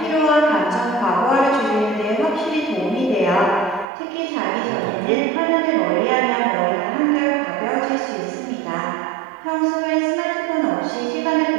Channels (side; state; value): left; drops out; at 3.9 s